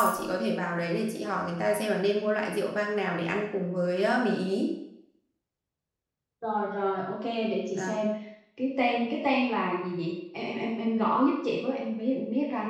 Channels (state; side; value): identical; both; correlation 1.00